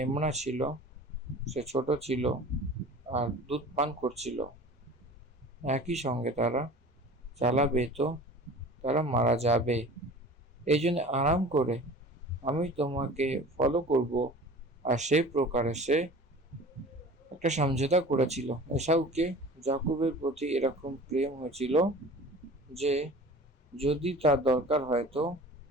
ছিল সে ছোট ছিল আর দুধ পান করছিল। একই সঙ্গে তারা চালাবে তো তারা মারা যাবে। এই জন্য আরাম করে আমি তোমাকে ফলো করব। আর সেই প্রকারে সে একটা সমঝোতা করেছিল। এসাউকে যাকুবের প্রতি এরকম প্রেম হয়েছিল যে যদি তার দরকার হয় তো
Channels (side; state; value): both; normal; correlation 0.41